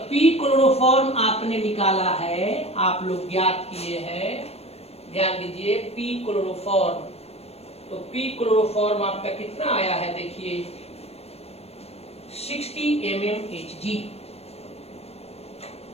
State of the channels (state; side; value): late; right; 0.30 ms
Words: P क्लोरोफॉर्म आपने निकाला है, आप लोग ज्ञात किए हैं, ध्यान दीजिए। P क्लोरोफॉर्म, तो P क्लोरोफॉर्म आपका कितना आया है, देखिए 60 mmHg।